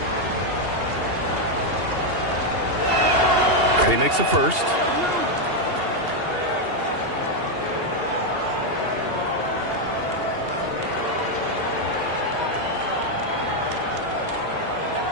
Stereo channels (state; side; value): late; left; 2.8 ms